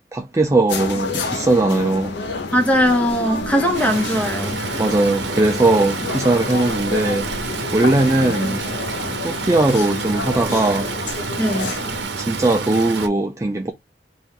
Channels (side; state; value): both; normal; correlation 0.65